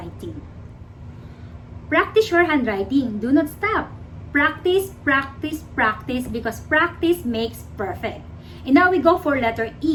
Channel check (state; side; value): identical; both; correlation 1.00